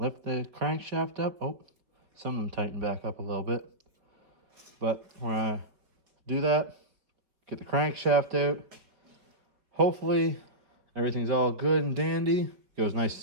the crankshaft up. Oh, some of them tighten back up a little bit. But we're going to do that, get the crankshaft out. Hopefully everything's all good and dandy, goes nice and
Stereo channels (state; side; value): late; left; 4.6 ms